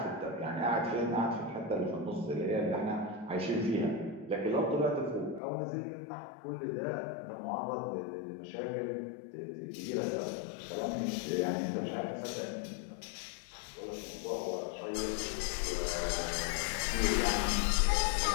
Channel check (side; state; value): right; drops out; at 5.4 s